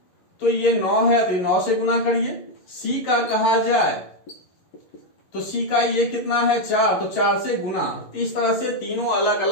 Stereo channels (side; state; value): right; late; 11 ms